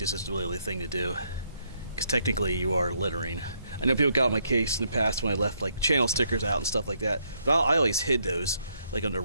is really the thing to do, because technically you are littering. I know people got on my case in the past when I left like channel stickers out and stuff like that, but I always hid those like under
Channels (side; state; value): both; inverted; correlation -0.74